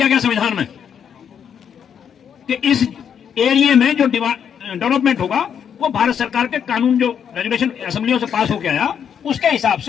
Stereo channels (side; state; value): right; quieter; 8.0 dB